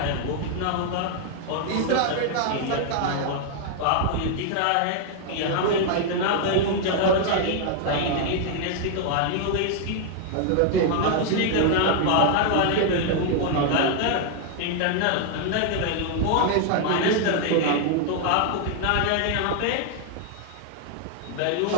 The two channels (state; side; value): different; both; correlation 0.00